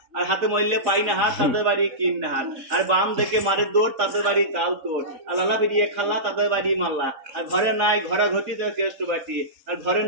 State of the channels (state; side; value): late; left; 3.8 ms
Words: আর হাতে মরলে পাই না হাত তাদের বাড়ি কিন না হাত। আর বাম দেখে মারে দৌড় তাদের বাড়ি কাল তোর। আর লালা বেরিয়ে খাল্লা তাদের বাড়ি মাল্লা। আর ঘরে নাই ঘরা ঘটি তো কেষ্ট বাটি। আর ঘরে